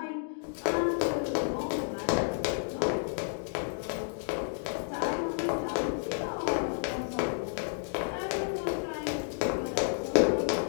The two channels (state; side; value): silent; right; digital silence